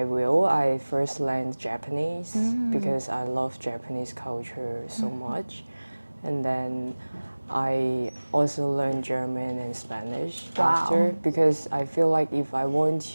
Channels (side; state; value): both; inverted; correlation -1.00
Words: will, I first learned Japanese because I love Japanese culture so much. And then I also learned German and Spanish after, because I feel like if I want